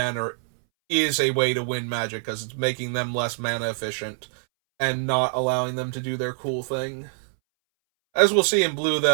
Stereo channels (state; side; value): silent; left; 62 dB below the other